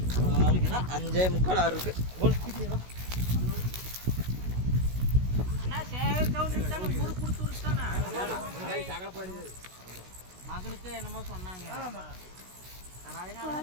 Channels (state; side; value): late; left; 16 ms